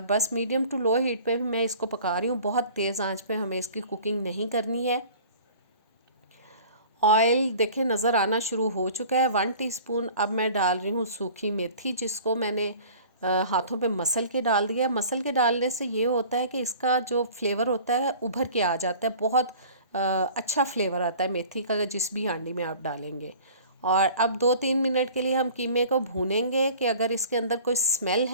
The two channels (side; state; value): both; inverted; correlation -0.46